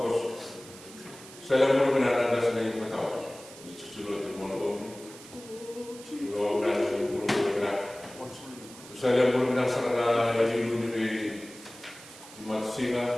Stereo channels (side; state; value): right; noise; hiss, 18 dB below the sound